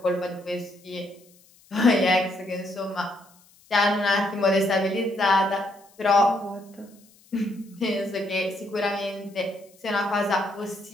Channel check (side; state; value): left; noise; hiss, 29 dB below the sound